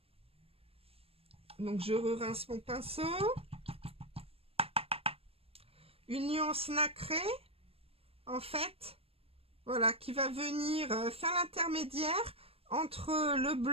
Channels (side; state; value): left; late; 0.28 ms